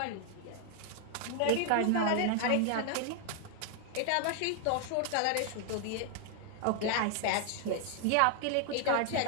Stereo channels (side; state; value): both; different; correlation 0.00